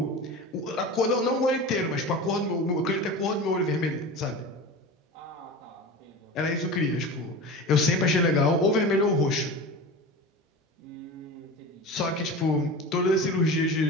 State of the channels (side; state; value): both; normal; correlation 0.31